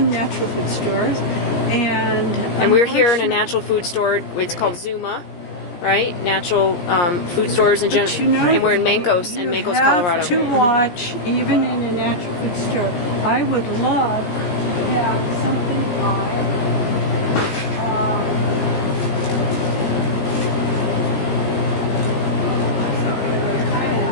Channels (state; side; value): late; right; 17 ms